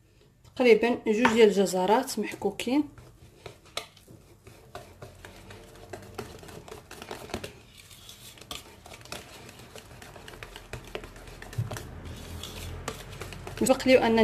تقريبا 2 ديال الجزرات محكوكين. سبق لي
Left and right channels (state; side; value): identical; both; correlation 1.00